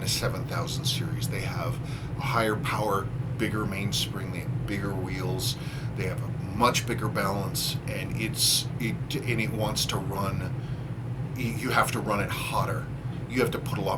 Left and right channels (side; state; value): both; identical; correlation 1.00